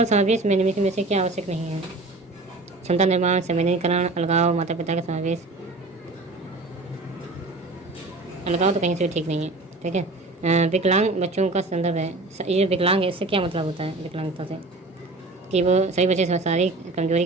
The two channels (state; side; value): quieter; left; 3.1 dB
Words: समावेश में निम्नलिखित में से क्या आवश्यक नहीं है? क्षमता निर्माण, संवेदनीकरण, अलगाव, माता पिता का समावेश। अलगाव तो कहीं से भी ठीक नहीं है, ठीक है। विकलांग बच्चों का संदर्भ है। ये विकलांग है, इससे क्या मतलब होता है विकलांगता से? कि वो सभी बच्चे शारीरिक कमजोरी